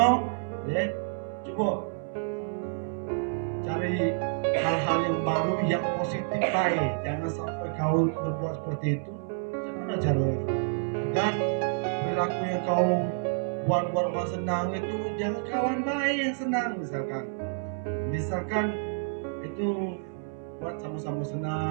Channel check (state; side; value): silent; left; 59 dB below the other